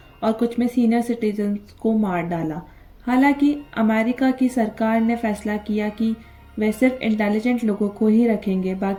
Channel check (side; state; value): both; identical; correlation 1.00